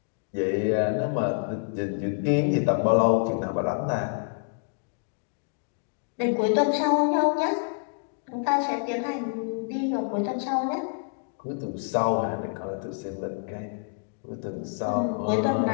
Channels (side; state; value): right; silent; digital silence